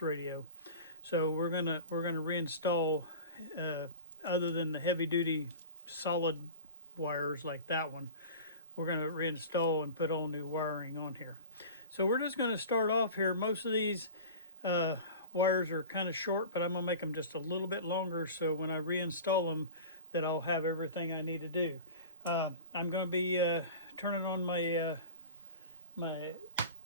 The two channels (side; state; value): both; inverted; correlation -0.35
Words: radio. So we're gonna reinstall, other than the heavy duty solid wires like that one, we're gonna reinstall and put all new wiring on here. So we're just gonna start off here. Most of these wires are kind of short, but I'm gonna make them just a little bit longer so when I reinstall them that I'll have everything I need to do. I'm gonna be turning on my my